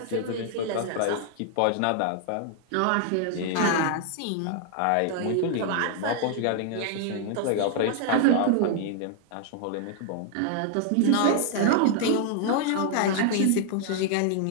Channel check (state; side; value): different; both; correlation 0.00